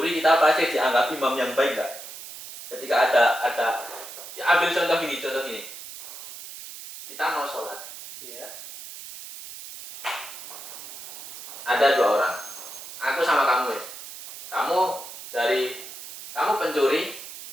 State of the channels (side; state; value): right; noise; hiss, 12 dB below the sound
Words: kita pasti dianggap imam yang baik nggak? Ketika ada ya ambil contoh gini, kita mau sholat, Iya. ada 2 orang, aku sama kamu wes, kamu pencuri,